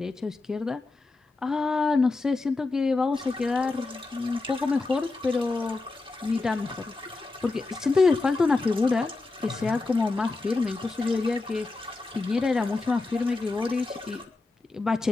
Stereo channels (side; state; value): right; quieter; 3.6 dB